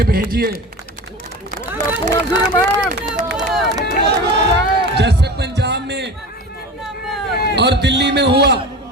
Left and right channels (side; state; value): both; normal; correlation 0.32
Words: भेजिए। जैसे पंजाब में और दिल्ली में हुआ,